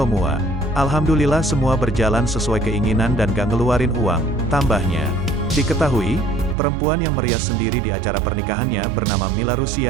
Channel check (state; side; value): drops out; left; at 6.6 s